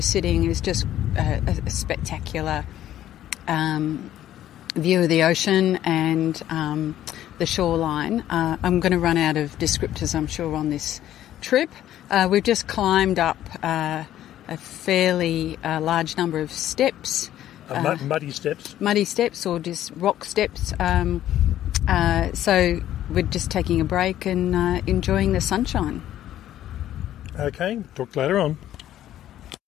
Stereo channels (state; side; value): quieter; right; 12.4 dB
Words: sitting is just a spectacular view of the ocean and the shoreline. I'm going to run out of descriptors, I'm sure, on this trip. We've just climbed up a fairly large number of steps. Muddy steps? Muddy steps or just rock steps. So we're just taking a break and enjoying the sunshine. Okay, talk later on.